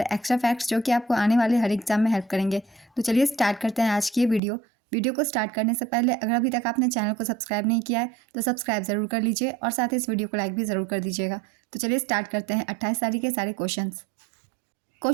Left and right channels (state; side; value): drops out; left; at 4.4 s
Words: एक्स्ट्रा फैक्ट्स जो कि आपको आने वाले हर एग्जाम में हेल्प करेंगे। तो चलिए स्टार्ट करते हैं आज की ये वीडियो को स्टार्ट करने से पहले अगर अभी तक आपने चैनल को सब्सक्राइब नहीं किया है तो सब्सक्राइब जरूर कर लीजिए और साथ ही इस वीडियो को लाइक भी ज़रूर कर दीजिएगा। तो चलिए स्टार्ट करते हैं 28 तारीख के सारे क्वेश्चन।